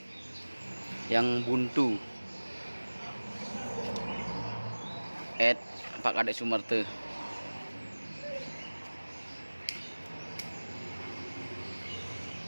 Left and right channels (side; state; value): both; inverted; correlation -1.00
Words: yang buntu. Pak Kadek Sumerte.